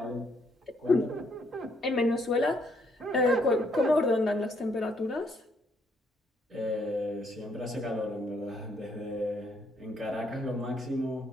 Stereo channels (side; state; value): both; normal; correlation 0.71